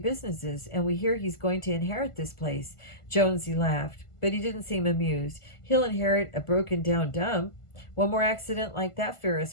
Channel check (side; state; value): right; late; 1.5 ms